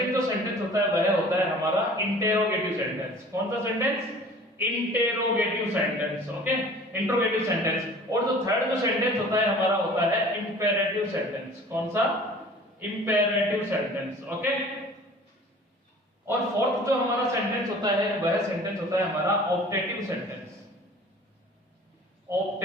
जो सेंटेंस होता है वह होता है हमारा इंटेरोगेटिव सेंटेंस। कौन सा sentence? Interrogative sentence. Okay, interrogative sentence. और जो थर्ड जो सेंटेंस होता है हमारा होता है इंपेरेटिव सेंटेंस। कौन सा? Imperative sentence. ओके, और फोर्थ जो हमारा सेंटेंस होता है वह सेंटेंस होता है हमारा optative sentence.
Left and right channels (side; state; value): both; normal; correlation 0.46